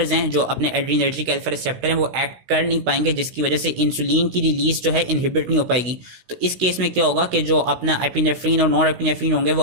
हैं, जो अपने एड्रीनर्जिक अल्फा रिसेप्टर हैं, वो एक्ट कर नहीं पाएंगे, जिसकी वजह से इंसुलिन की रिलीज जो है इनहिबिट नहीं हो पाएगी। तो इस केस में क्या होगा कि जो अपना एपिनेफ्रिन और नॉन एपिनेफ्रिन होंगे, वो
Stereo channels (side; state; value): left; late; 16 ms